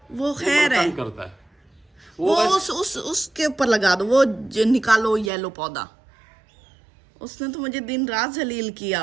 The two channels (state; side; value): drops out; left; at 5.3 s